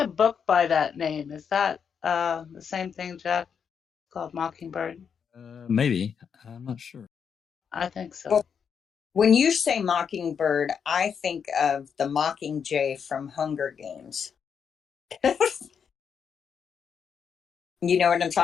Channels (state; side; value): quieter; right; 7.0 dB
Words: book by that name. Is that the same thing, Jack? Called Mockingbird? Maybe. I'm not sure. I think so. Well, when you say Mockingbird, I think of the Mockingjay from Hunger Games. You know what I'm